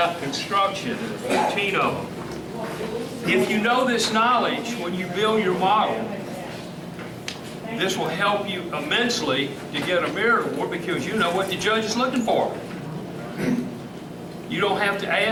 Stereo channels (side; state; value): both; identical; correlation 1.00